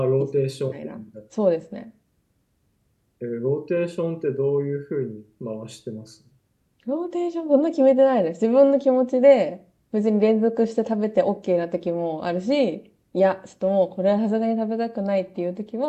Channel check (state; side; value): identical; both; correlation 1.00